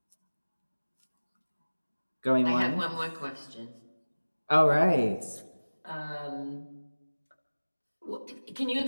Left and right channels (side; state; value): both; inverted; correlation -1.00